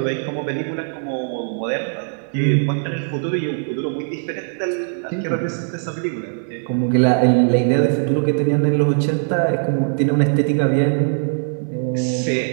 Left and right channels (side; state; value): left; silent; 64 dB below the other